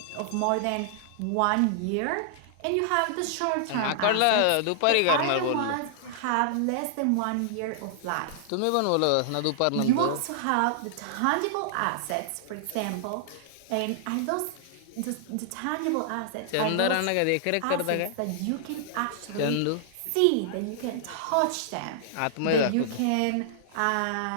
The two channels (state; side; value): different; both; correlation -0.01